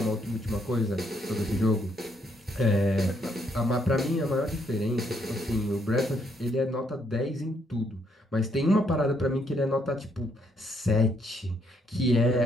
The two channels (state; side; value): normal; both; correlation 0.73